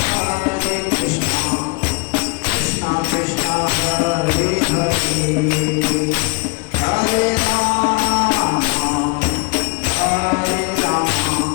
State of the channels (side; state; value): right; quieter; 30.4 dB